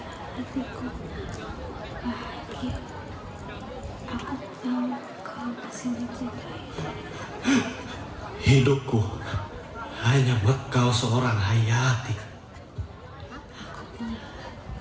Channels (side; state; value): both; identical; correlation 1.00